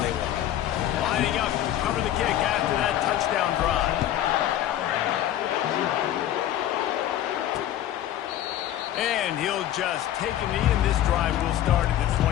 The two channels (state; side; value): quieter; right; 12.1 dB